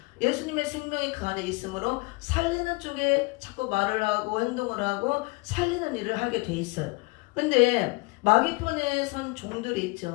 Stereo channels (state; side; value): quieter; right; 25.8 dB